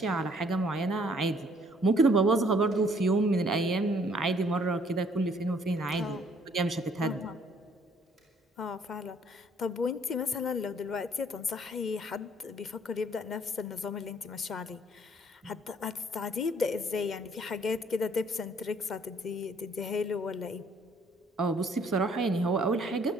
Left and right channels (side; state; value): both; normal; correlation 0.62